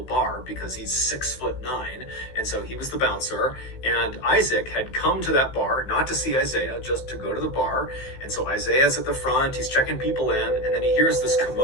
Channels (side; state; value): right; late; 16 ms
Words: bar because he's 6'9". 9, and so he was the bouncer, and Isaac had come to that bar, not to see Isaiah, just to go to the bar, and so Isaiah's at the front, he's checking people in, and then he hears this